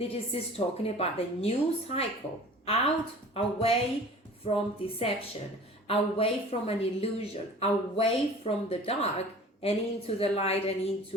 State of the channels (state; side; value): normal; both; correlation 0.44